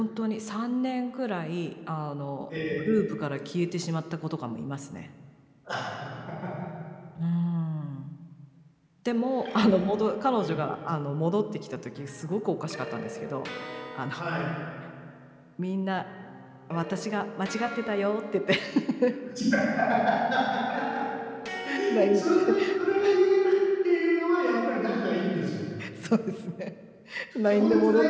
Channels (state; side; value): identical; both; correlation 1.00